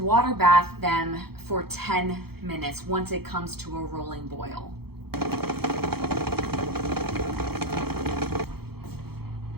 bath them for 10 minutes once it comes to a rolling boil.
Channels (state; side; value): late; left; 0.96 ms